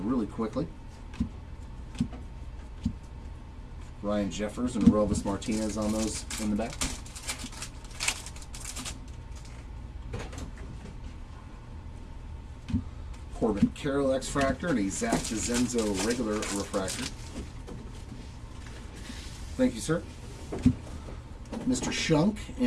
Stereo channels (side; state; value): both; identical; correlation 1.00